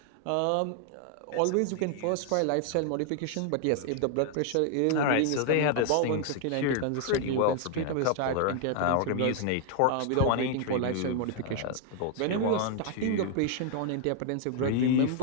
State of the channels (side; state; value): both; different; correlation 0.00